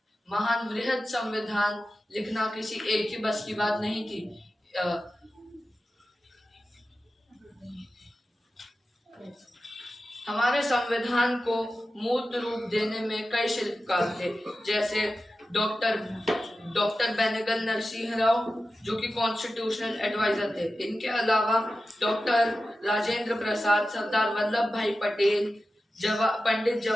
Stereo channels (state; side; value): normal; both; correlation 0.93